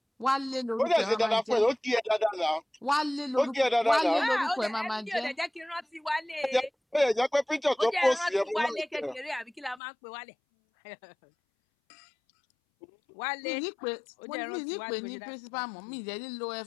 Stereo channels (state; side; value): drops out; right; at 9.8 s